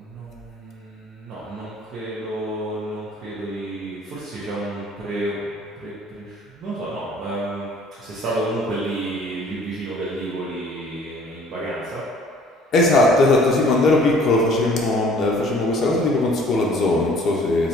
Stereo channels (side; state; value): both; normal; correlation 0.54